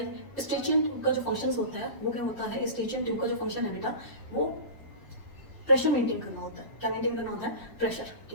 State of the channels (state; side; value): late; right; 1.0 ms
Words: स्ट्रेचिंग ट्यूब का जो फंक्शन होता है वो क्या होता है, स्ट्रेचिंग ट्यूब का जो फंक्शन है बेटा वो प्रेशर मेंटेन करना होता है। क्या मेंटेन करना होता है, प्रेशर।